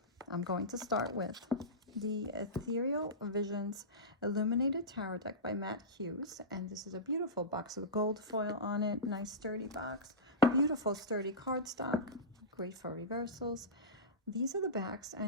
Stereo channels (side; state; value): both; normal; correlation -0.16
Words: I'm going to start with the Ethereal Visions Illuminated Tarot deck by Hughes, and this is a beautiful box with gold foil on it. Nice sturdy box, beautiful sturdy cardstock, great for reversals. These are the backs,